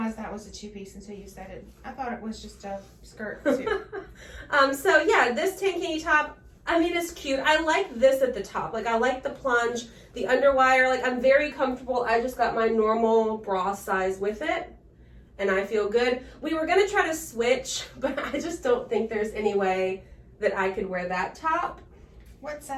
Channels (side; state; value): both; identical; correlation 1.00